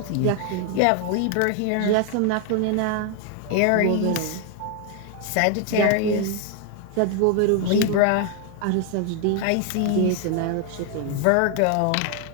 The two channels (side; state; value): both; different; correlation 0.00